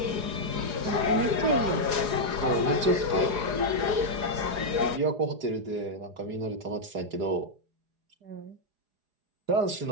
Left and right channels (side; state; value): left; late; 4.8 ms